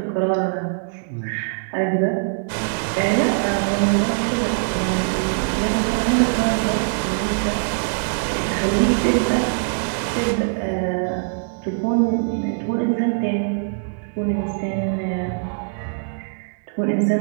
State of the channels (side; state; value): left; silent; digital silence